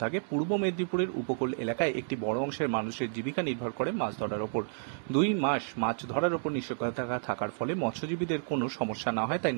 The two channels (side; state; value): left; silent; digital silence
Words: থাকে। পূর্ব মেদিনীপুরের উপকূল এলাকায় একটি বড় অংশের মানুষের জীবিকা নির্ভর করে মাছ ধরার ওপর। 2 মাস মাছ ধরার ওপর নিষেধাজ্ঞা থাকার ফলে মৎস্যজীবীদের কোনো সমস্যা না হয় তাই